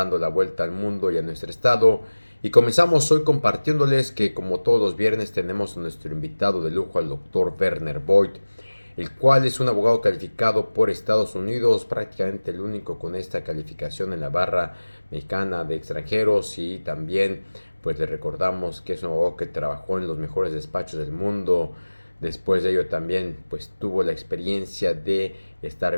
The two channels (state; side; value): inverted; both; correlation -1.00